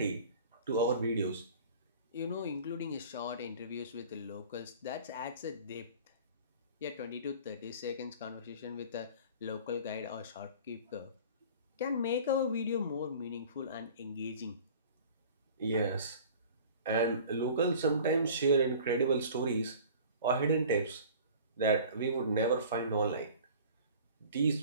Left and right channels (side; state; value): both; inverted; correlation -0.44